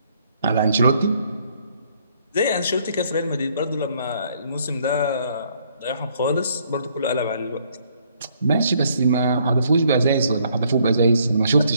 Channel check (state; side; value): inverted; both; correlation -0.67